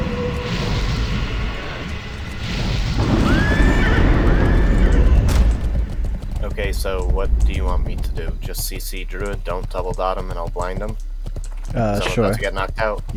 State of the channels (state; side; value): identical; both; correlation 1.00